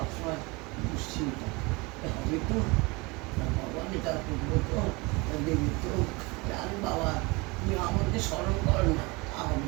দুশ্চিন্তা হবে তো ভগবানই তার করবো তো দেবী তো জান বাবা তুমি আমাকে স্মরণ করো না তা হবে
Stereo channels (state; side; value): quieter; left; 25.7 dB